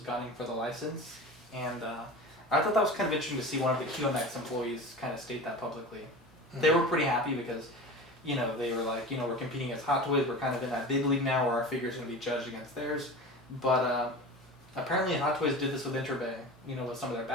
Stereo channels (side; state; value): both; normal; correlation 0.32